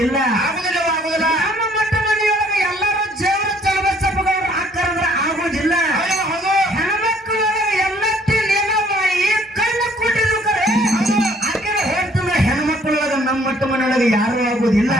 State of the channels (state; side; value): normal; both; correlation 0.61